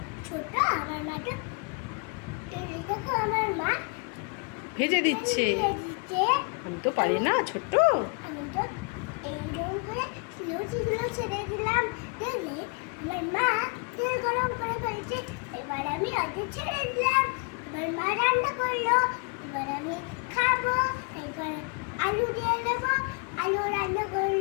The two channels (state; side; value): quieter; right; 36.9 dB